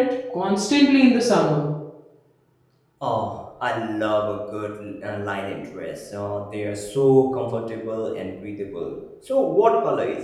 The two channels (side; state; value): both; identical; correlation 1.00